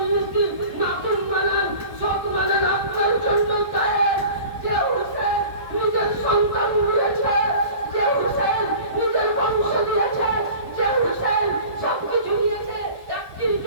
দিন মাখন বানান, সব বানান আপনার জন্য চায়। যে হুসেন নিজের সন্তান দিয়েছে, যে হুসেন নিজের বংশ দিয়েছে, যে হুসেন সবকিছু দিয়েছে, একটির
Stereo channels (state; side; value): late; left; 1.2 ms